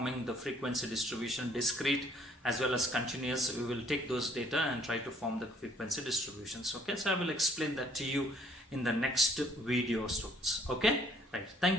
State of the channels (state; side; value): normal; both; correlation 0.61